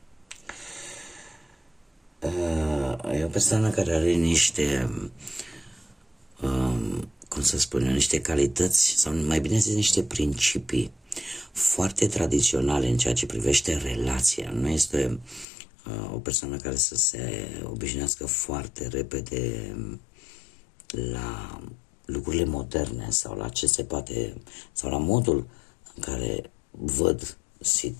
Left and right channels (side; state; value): right; drops out; at 15.5 s